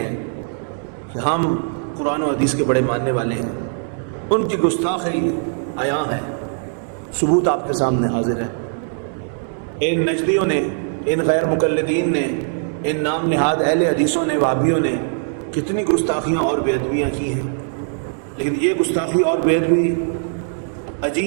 کہ ہم قرآن و حدیث کے بڑے ماننے والے ہیں، ان کی گستاخی عیاں ہے، ثبوت آپ کے سامنے حاضر ہے۔ ان نجدیوں نے، ان غیر مقلدین نے، ان نام نہاد اہل حدیثوں نے، وہابیوں نے کتنی گستاخیاں اور بے ادبیاں کی ہیں، لیکن یہ گستاخی اور بے ادبی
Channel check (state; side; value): silent; left; digital silence